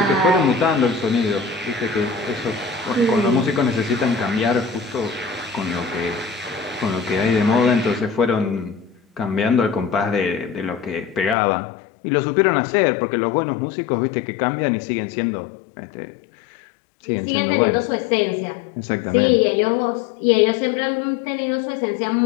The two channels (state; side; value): drops out; right; at 11.4 s